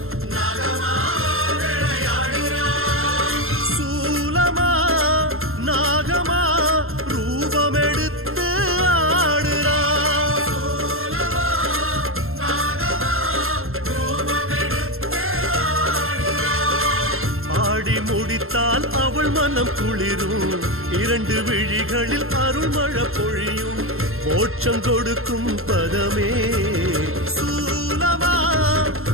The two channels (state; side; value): late; left; 0.61 ms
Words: சூலமா நாகமா ரூபம் எடுத்து ஆடுறா. ஆடி முடித்தால் அவள் மனம் குளிரும், இரண்டு விழிகளில் அருள்மழை பொழியும், மோட்சம் கொடுக்கும் பதமே. சூலமா